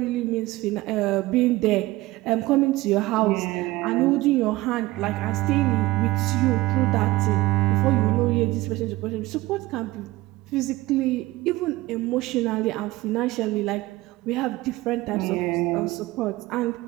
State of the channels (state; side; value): quieter; left; 18.5 dB